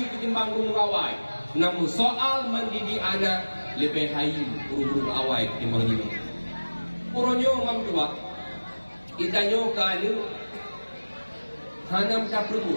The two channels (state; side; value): inverted; both; correlation -1.00